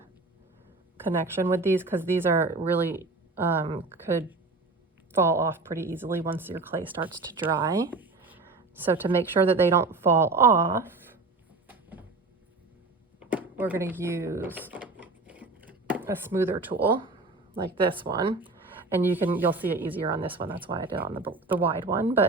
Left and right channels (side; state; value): left; quieter; 3.6 dB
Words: connection with these, because these are really could fall off pretty easily once your clay starts to dry. So to make sure that they don't fall off, we're going to use a smoother tool like this one. And you'll see it easier on this one. That's why I did it on the wide one.